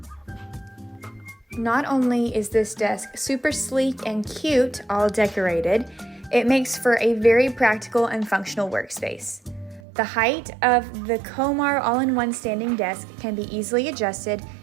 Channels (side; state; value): left; drops out; at 9.8 s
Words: Not only is this desk super sleek and cute, all decorated, it makes for a very practical and functional workspace. The height of the Komar all-in-one standing desk can be easily adjusted